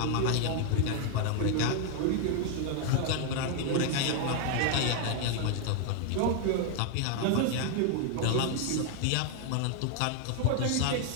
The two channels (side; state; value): both; different; correlation 0.00